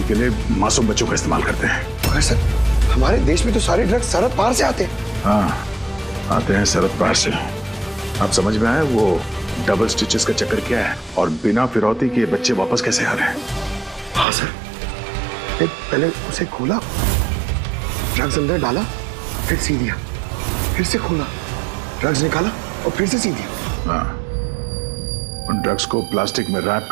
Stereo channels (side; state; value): left; drops out; at 14.2 s